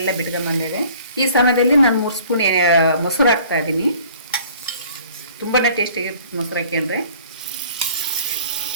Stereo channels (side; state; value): both; inverted; correlation -0.52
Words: ಬಿಟ್ಕೊಂಡ್ಬಂದಿದೆ. ಈ ಸಮಯದಲ್ಲಿ ನಾನು 3 ಸ್ಪೂನ್ ಮೊಸರು ಹಾಕ್ತಾ ಇದ್ದೀನಿ. ತುಂಬಾ ಟೇಸ್ಟಿಯಾಗಿರುತ್ತೆ ಮೊಸರು ಹಾಕ್ಕೊಂಡ್ರೆ.